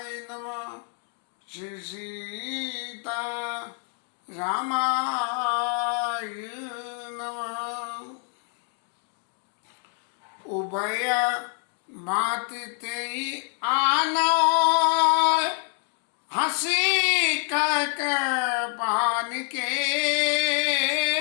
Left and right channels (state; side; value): quieter; right; 37.2 dB